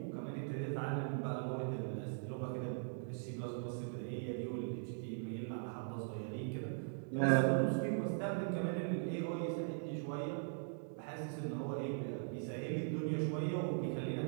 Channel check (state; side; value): silent; left; digital silence